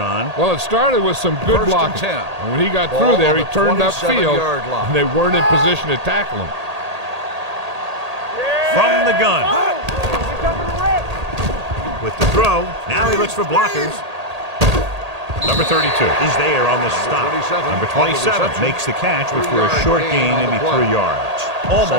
Well, it started with some good blocking. And when he got through there, he turned upfield, and they weren't in position to tackle him. From the gun. With the throw, now he looks for blockers. Number 32 is there on the stop. Number 27 makes the catch, which for a short gain, maybe 3 yards.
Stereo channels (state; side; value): late; left; 1.8 ms